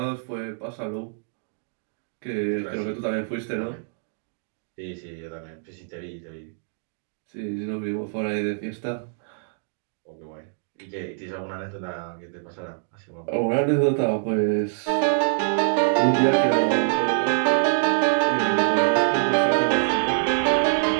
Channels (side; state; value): left; silent; digital silence